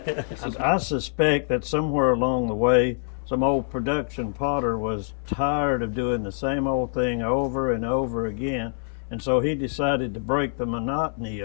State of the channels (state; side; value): silent; right; 62 dB below the other